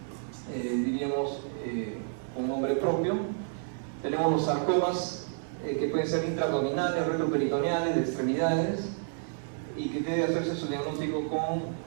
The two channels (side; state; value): left; silent; 56 dB below the other